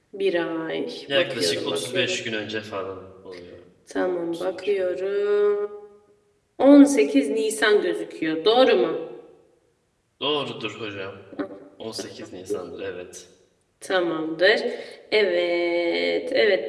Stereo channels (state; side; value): identical; both; correlation 1.00